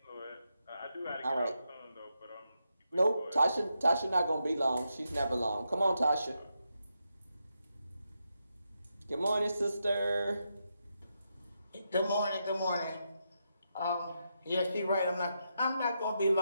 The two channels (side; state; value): both; inverted; correlation -0.84